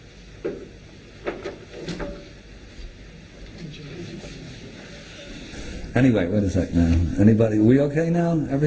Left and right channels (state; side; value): identical; both; correlation 1.00